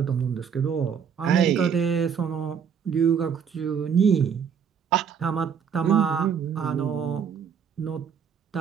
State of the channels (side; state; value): left; quieter; 7.3 dB